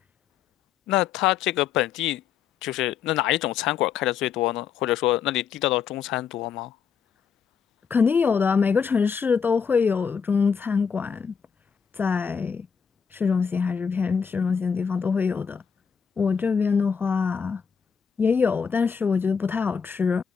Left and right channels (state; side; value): quieter; right; 6.6 dB